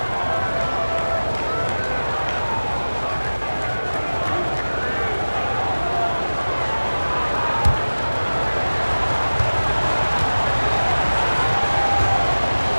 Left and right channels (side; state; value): both; inverted; correlation -1.00